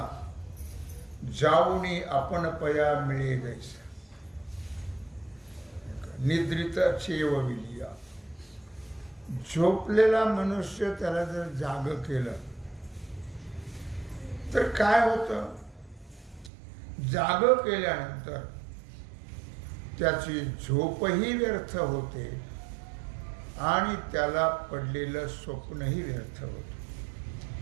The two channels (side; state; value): left; drops out; at 16.5 s